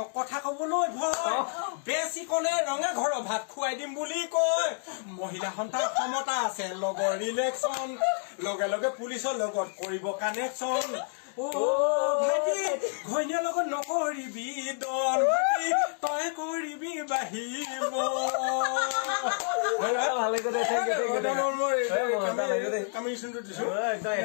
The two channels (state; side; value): silent; right; 58 dB below the other